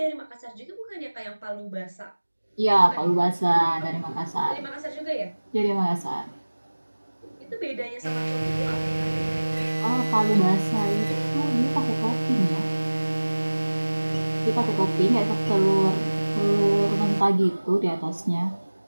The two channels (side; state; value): both; inverted; correlation -1.00